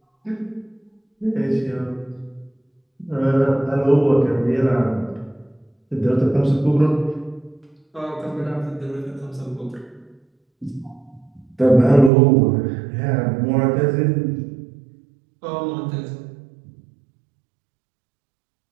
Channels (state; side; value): drops out; left; at 12.1 s